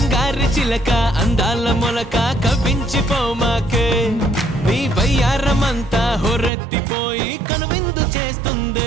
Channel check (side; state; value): left; drops out; at 6.5 s